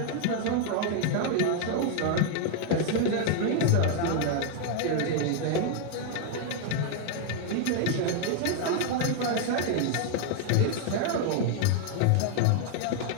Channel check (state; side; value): different; both; correlation 0.00